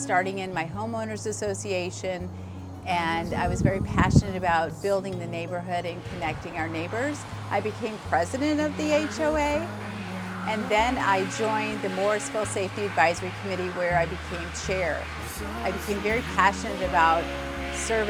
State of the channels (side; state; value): both; identical; correlation 1.00